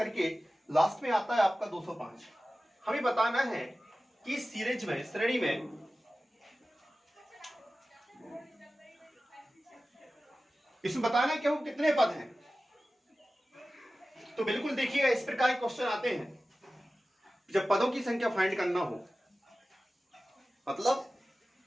लास्ट में आता है आपका 205। हमें बताना है कि सीरीज में, श्रेणी में इसमें बताना है कि हम कितने पद हैं। तो बिल्कुल देखिएगा, इस प्रकार के क्वेश्चन आते हैं जब पदों की संख्या फाइंड करना हो, मतलब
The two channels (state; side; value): normal; both; correlation 0.96